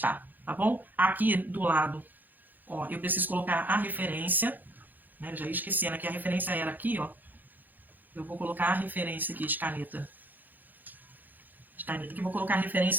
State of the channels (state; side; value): late; left; 0.086 ms